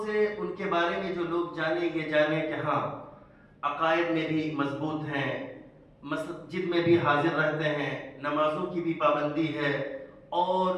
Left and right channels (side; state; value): both; identical; correlation 1.00